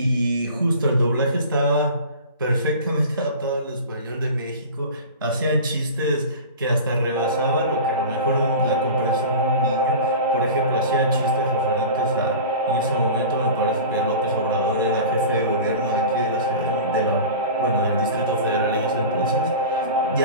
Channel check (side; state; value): both; inverted; correlation -0.35